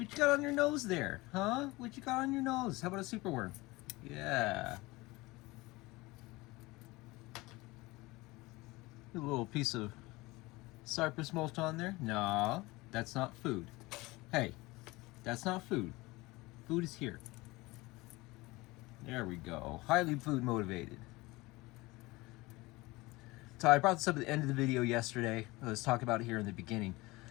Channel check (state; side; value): quieter; right; 21.7 dB